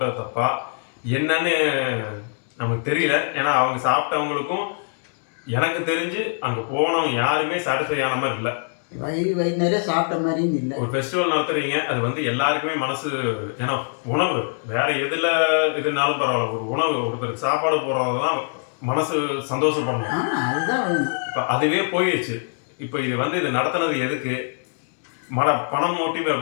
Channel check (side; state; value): right; silent; 63 dB below the other